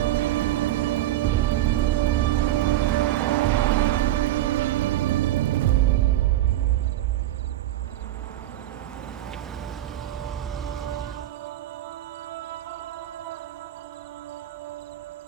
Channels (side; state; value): left; quieter; 14.1 dB